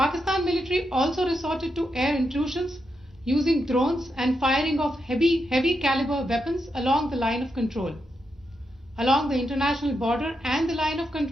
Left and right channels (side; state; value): both; normal; correlation 0.84